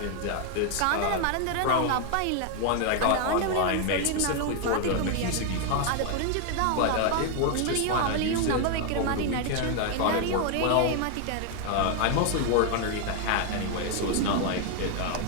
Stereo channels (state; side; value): different; both; correlation 0.00